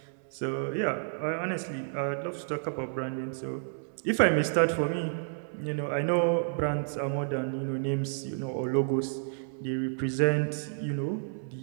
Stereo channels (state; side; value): silent; left; digital silence